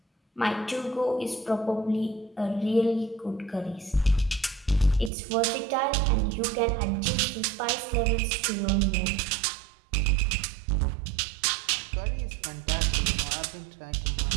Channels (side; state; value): left; drops out; at 5.1 s